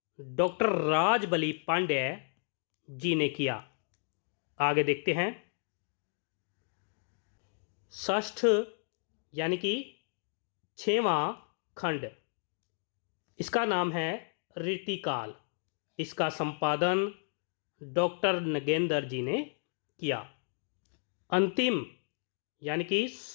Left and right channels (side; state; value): right; silent; 56 dB below the other